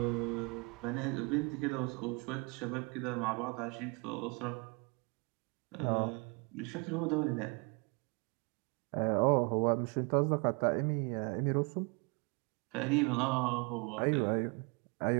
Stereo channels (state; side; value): quieter; left; 31.4 dB